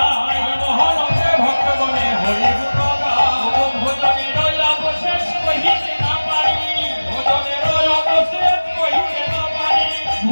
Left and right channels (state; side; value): inverted; both; correlation -1.00